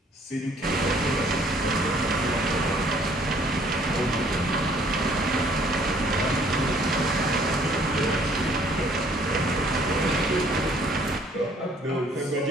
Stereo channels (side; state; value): both; normal; correlation 0.60